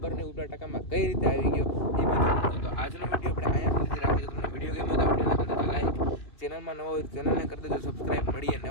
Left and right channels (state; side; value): late; right; 2.9 ms